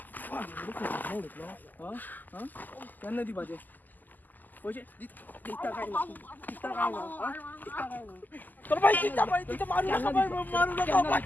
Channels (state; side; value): late; right; 0.085 ms